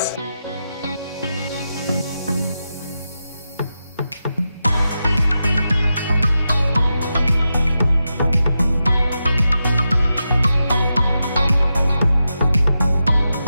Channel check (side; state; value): both; inverted; correlation -0.89